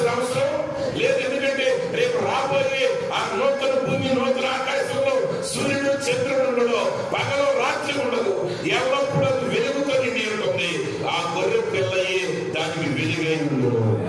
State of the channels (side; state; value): both; identical; correlation 1.00